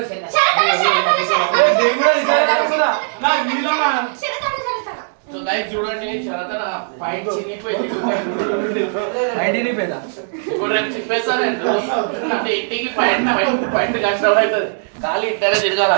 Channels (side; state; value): left; silent; digital silence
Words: శరతన, శరతన. నేను కూడా ఇద్దరు రాసుకున్నా. నా వీళ్ళనా? శరతన, శరతన. సో గైస్ చూడండి శరతన పాయింట్ చినిగిపోయింది ఐడిని పేదా ఇప్పుడు రేపు చెప్పేస్తాను అంటే ఇంటికి పాయింట్ పాయింట్ కష్టం అవుతుంది ఖాళీ ఇంటనే